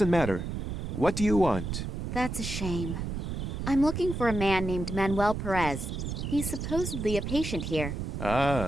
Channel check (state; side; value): noise; right; rumble, 4 dB below the sound